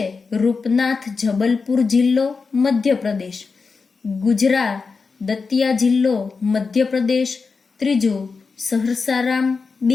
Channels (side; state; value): right; quieter; 4.7 dB